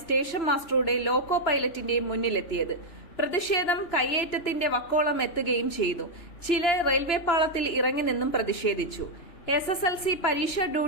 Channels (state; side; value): late; right; 2.9 ms